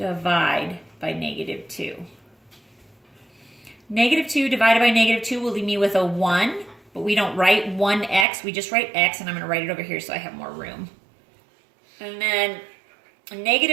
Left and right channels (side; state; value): left; drops out; at 8.2 s